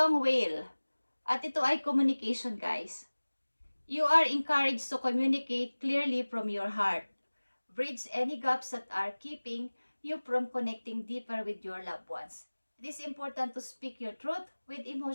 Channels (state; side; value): inverted; both; correlation -1.00